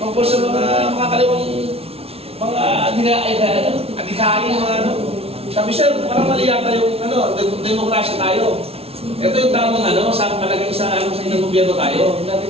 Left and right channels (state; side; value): late; left; 0.29 ms